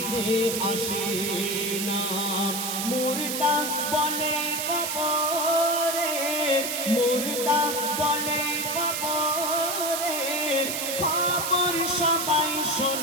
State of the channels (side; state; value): right; noise; hiss, 2 dB below the sound